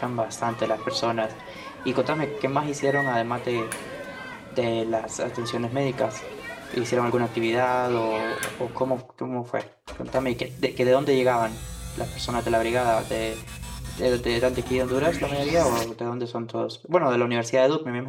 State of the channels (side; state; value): both; identical; correlation 1.00